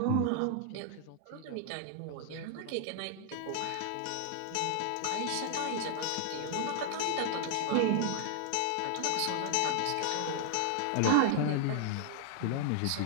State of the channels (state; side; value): different; both; correlation 0.00